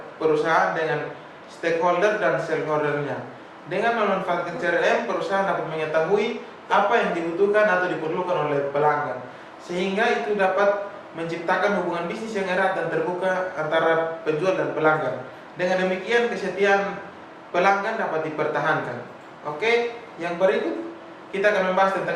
perusahaan dengan stakeholder dan shareholdernya. Dengan memanfaatkan CRM, perusahaan dapat mengetahui apa yang dibutuhkan atau diperlukan oleh pelanggan, sehingga itu dapat menciptakan hubungan bisnis yang erat dan terbuka antara penjual dan pelanggan. Dengan demikian, kesetiaan pelanggan dapat dipertahankan. Oke, yang berikut kita akan membahas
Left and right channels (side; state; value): both; identical; correlation 1.00